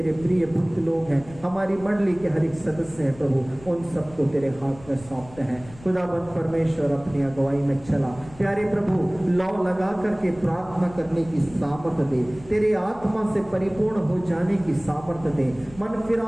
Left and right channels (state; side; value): noise; left; rumble, 20 dB below the sound